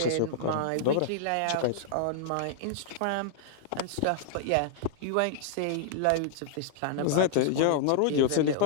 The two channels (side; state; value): both; different; correlation -0.01